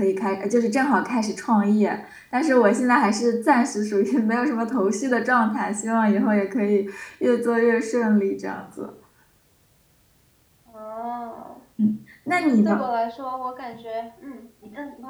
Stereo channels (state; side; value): identical; both; correlation 1.00